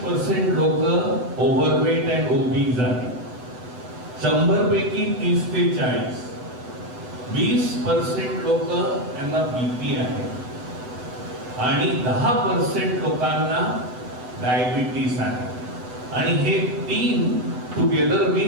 लोक ओव्हरवेट अँड ओबीज आहेत. 100 पैकी 30 ते 40, 20% लोक यांना BP आहे आणि 10% लोकांना डायबिटीस आहे. आणि हे 3 टुगेदर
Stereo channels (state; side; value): late; left; 8.1 ms